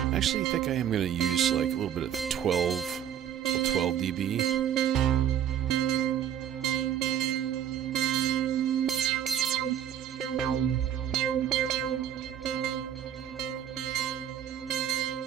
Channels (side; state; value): left; quieter; 9.8 dB